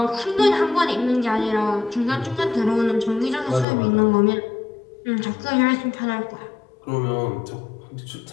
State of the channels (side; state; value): right; drops out; at 3.7 s